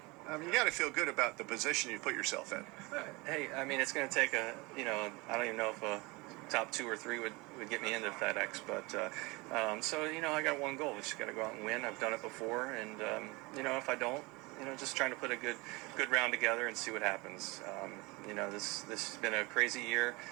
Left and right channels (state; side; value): quieter; left; 25.0 dB